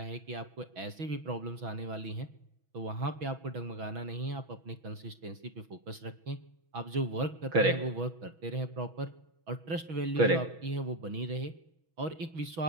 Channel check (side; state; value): left; late; 6.1 ms